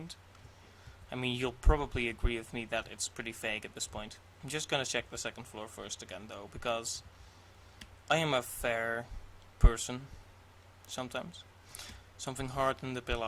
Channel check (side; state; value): both; identical; correlation 1.00